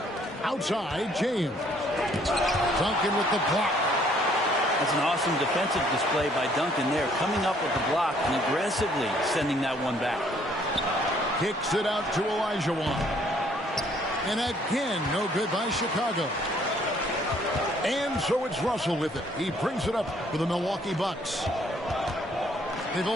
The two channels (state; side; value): normal; both; correlation 0.63